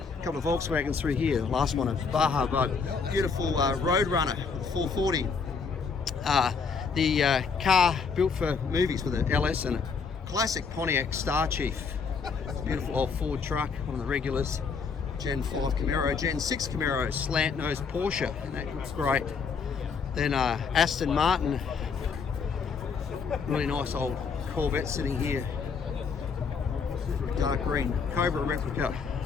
couple of Volkswagens through here. Last one, a Baja Bug. Beautiful Roadrunner with a 440. The car built for movies with an LS and a classic Pontiac Star Chief. Beautiful old Ford truck, one of the regulars. Gen 5 Camaro, Gen 6 Camaro, slant nose Porsche, and that looks great. Then Aston Martin, really nice old Corvette sitting here, dark green Cobra replica.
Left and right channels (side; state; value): right; quieter; 5.4 dB